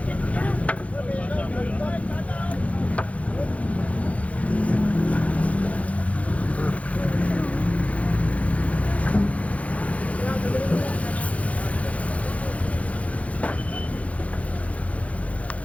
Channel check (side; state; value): right; late; 0.066 ms